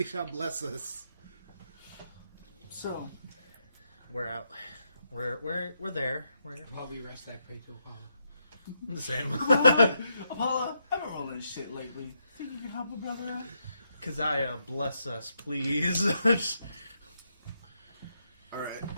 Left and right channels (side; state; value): both; inverted; correlation -0.81